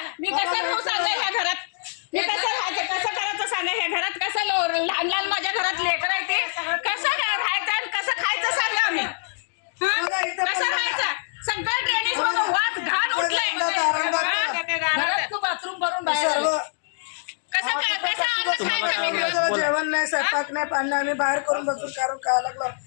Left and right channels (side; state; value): right; silent; digital silence